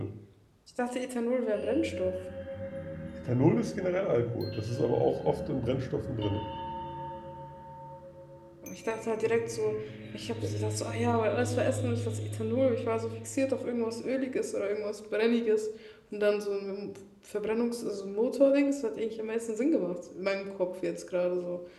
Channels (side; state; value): both; identical; correlation 1.00